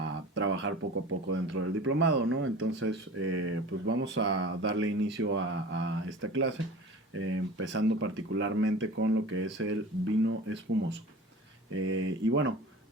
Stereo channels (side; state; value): both; normal; correlation 0.38